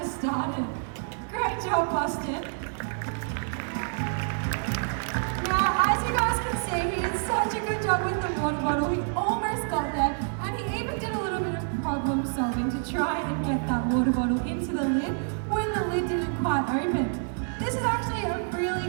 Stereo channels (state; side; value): silent; left; 60 dB below the other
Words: started. Great job, Boston. Now, as you guys can see, he did such a good job with the water bottle. He almost got there, and he even did a little bit of problem solving to try and get that water bottle into the lid when the lid didn't quite open. This is actually a